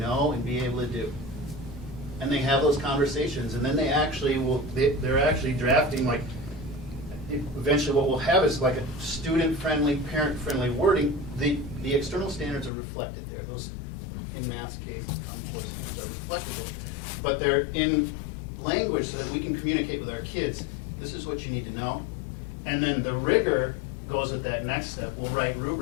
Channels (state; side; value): drops out; right; at 12.7 s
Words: and be able to do? And they have those conversations, and then they actually they're actually drafting, like, eventually what we'll have is like a student-friendly, parent-friendly wording. The external standards are reflected there. Those, in math's case, Common Core standards are but they're in language so that we can communicate with our kids. This is what you need to know. And then the rigor goes with that next step. We'll write